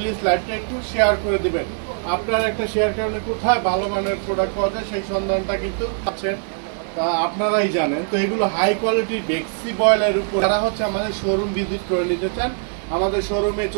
লাইভটা একটু শেয়ার করে দিবেন। আপনার একটা শেয়ার কারণে কোথায় ভালো মানের প্রোডাক্ট পাওয়া যায় সেই সন্ধানটা কিন্তু আছেন, তা আপনারাই জানেন। তো এগুলো হাই কোয়ালিটির বেক্সি বয়েলের উপর যারা হচ্ছে আমাদের শোরুম ভিজিট করে নিতে চান আমাদের শোরুমে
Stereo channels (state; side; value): silent; left; 62 dB below the other